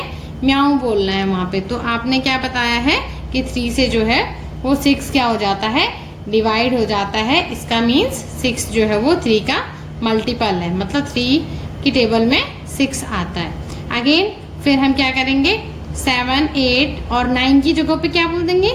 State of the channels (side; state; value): both; identical; correlation 1.00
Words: म्याऊ बोलना है वहां पे। तो आपने क्या बताया है कि 3 से जो है वो 6 क्या हो जाता है, डिवाइड हो जाता है। इसका मीन्स 6 जो है वो 3 का मल्टीपल है, मतलब 3 की टेबल में 6 आता है। अगेन फिर हम क्या करेंगे, 7 8 और 9 की जगह पे क्या बोल देंगे,